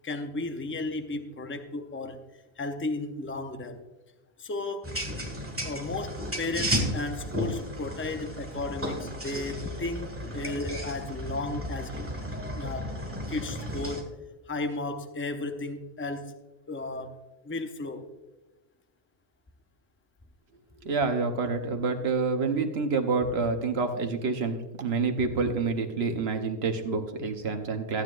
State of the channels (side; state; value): both; normal; correlation 0.04